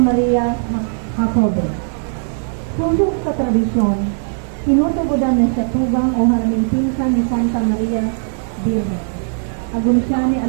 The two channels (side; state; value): left; silent; digital silence